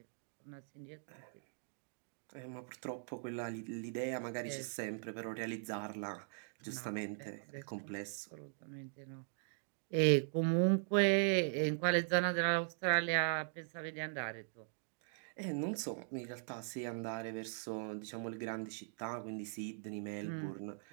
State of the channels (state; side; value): silent; left; digital silence